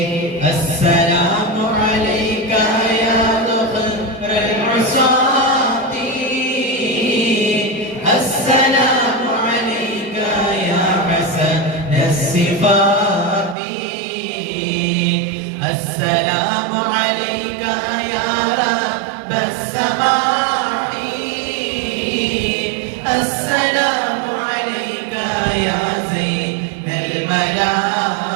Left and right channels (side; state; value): left; drops out; at 13.6 s